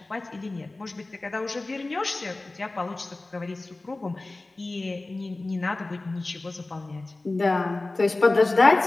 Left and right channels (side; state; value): right; quieter; 3.1 dB